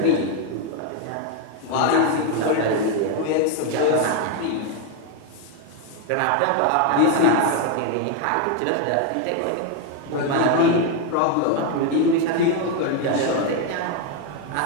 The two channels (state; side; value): different; both; correlation 0.01